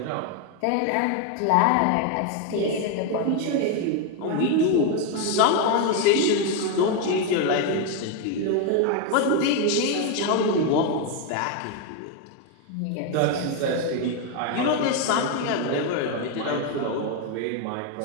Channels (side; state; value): both; different; correlation 0.01